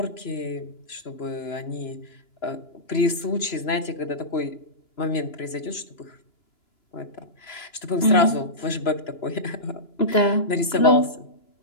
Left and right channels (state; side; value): late; right; 2.9 ms